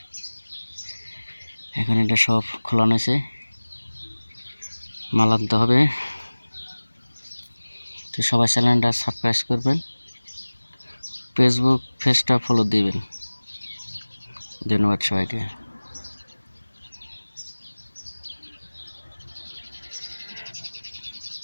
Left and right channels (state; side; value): inverted; both; correlation -1.00